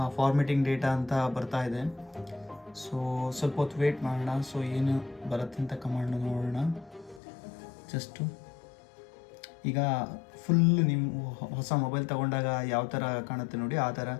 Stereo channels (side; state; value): right; drops out; at 7.2 s